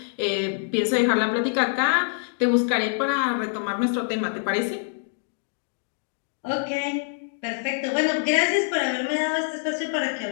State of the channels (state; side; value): silent; right; digital silence